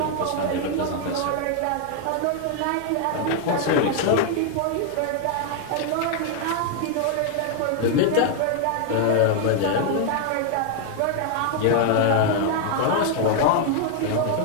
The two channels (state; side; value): different; both; correlation 0.00